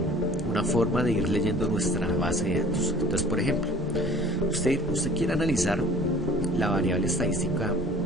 forma de ir leyendo nuestra base de datos. Entonces, por ejemplo, usted quiere analizar la variable estadística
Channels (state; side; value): normal; both; correlation 0.49